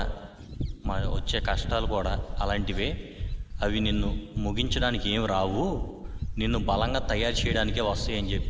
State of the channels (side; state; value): both; identical; correlation 1.00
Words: మన వచ్చే కష్టాలు కూడా అలాంటివే. అవి నిన్ను ముగించడానికి ఏం రావు, నిన్ను బలంగా తయారు చేయడానికే వస్తాయి అని